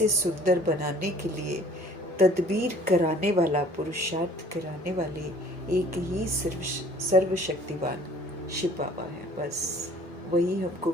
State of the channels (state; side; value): normal; both; correlation 0.53